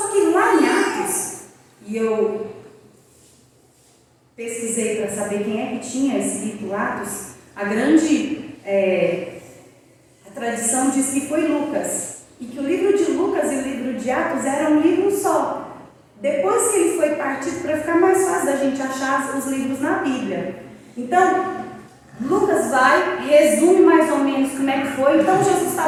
que lá em Atos, e eu pesquisei para saber quem é que tinha escrito Atos, a tradição diz que foi Lucas, e que o livro de Lucas e o livro de Atos eram um livro só. Depois que ele foi partido, para ficar mais fácil da gente achar os livros na Bíblia. Então, Lucas vai, resume mais ou menos como é que foi. Então, Jesus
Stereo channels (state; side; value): identical; both; correlation 1.00